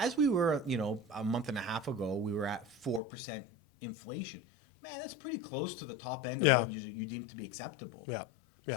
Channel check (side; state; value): right; drops out; at 3.0 s